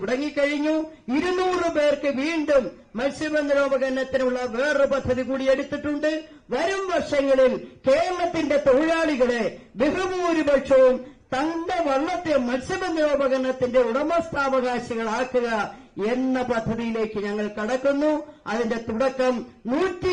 200 പേർക്ക് വീണ്ടും മത്സ്യബന്ധനോപകരണത്തിനുള്ള വേറൊരു പദ്ധതി കൂടി എടുത്തിട്ടുണ്ട്. വരും വർഷങ്ങളിൽ കേരളത്തിന്റെ തൊഴിലാളികളെ ബഹുഭൂരിപക്ഷവും തന്റെ വള്ളത്തെ മത്സ്യബന്ധനോപകരണത്തിന്റെ ഉടമസ്ഥാവകാശികളാക്കുക എന്ന പദ്ധതിയിലേക്ക് ഞങ്ങൾ കടക്കുന്നു. അതിന്റെ തുടക്കം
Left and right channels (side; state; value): both; identical; correlation 1.00